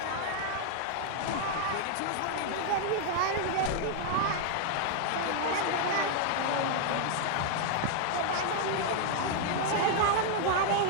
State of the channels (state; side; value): different; both; correlation -0.01